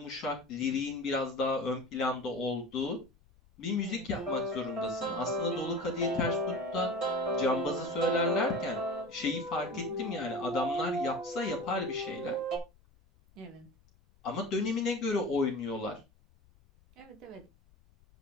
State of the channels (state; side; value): noise; left; rumble, 29 dB below the sound